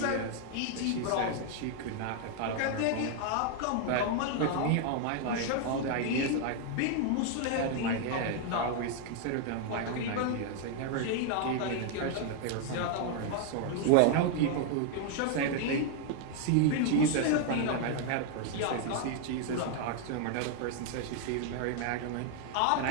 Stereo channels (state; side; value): different; both; correlation 0.00